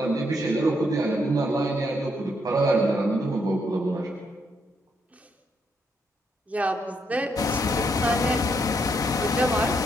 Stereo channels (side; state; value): both; normal; correlation 0.76